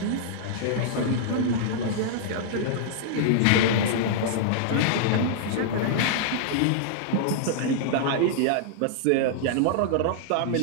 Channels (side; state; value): both; different; correlation -0.01